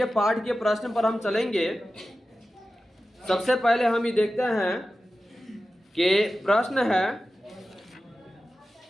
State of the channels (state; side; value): normal; both; correlation 0.94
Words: पाठ के प्रश्न पर हम चलेंगे। सबसे पहले हम ये देखते हैं कि प्रश्न है,